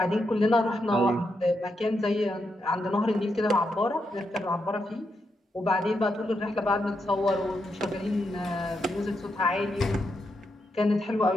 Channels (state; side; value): normal; both; correlation 0.83